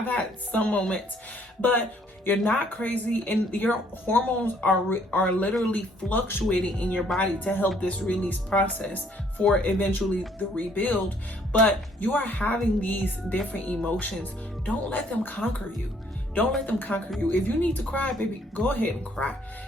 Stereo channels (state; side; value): normal; both; correlation 0.64